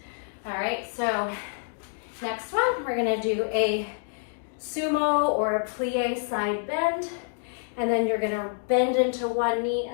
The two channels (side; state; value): right; silent; digital silence